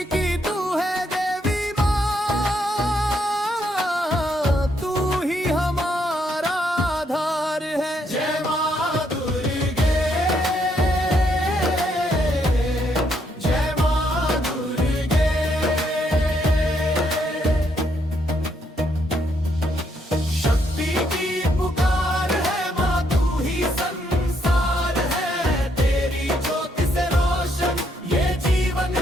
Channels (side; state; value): both; normal; correlation 0.74